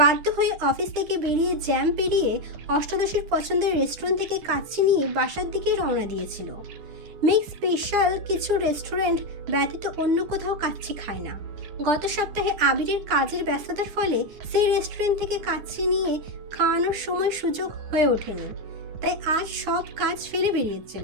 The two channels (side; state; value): left; late; 9.8 ms